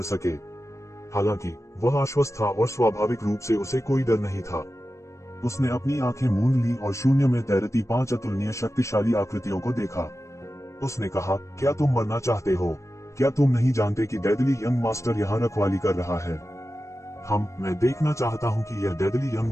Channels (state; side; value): late; right; 0.14 ms